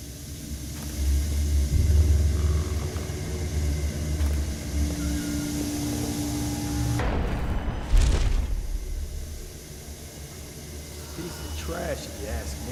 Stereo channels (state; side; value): identical; both; correlation 1.00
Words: Piece of trash, if you ask